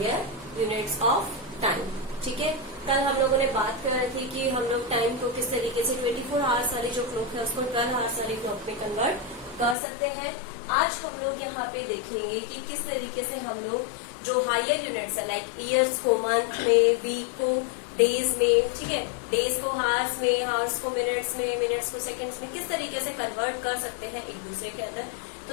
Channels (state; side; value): drops out; right; at 9.8 s